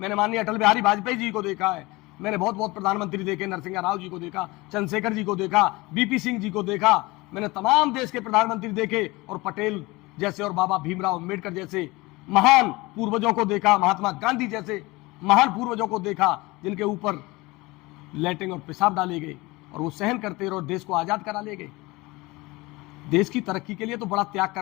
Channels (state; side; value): quieter; right; 22.2 dB